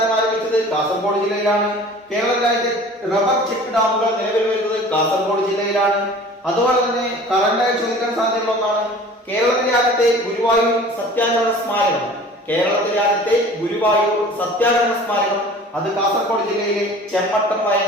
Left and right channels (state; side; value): normal; both; correlation 0.44